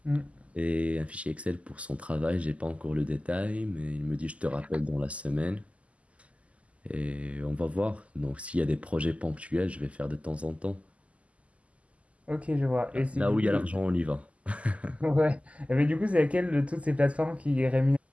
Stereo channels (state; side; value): late; left; 0.065 ms